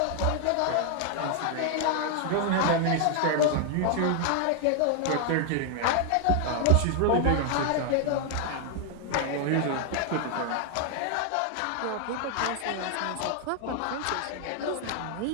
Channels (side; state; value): both; different; correlation 0.00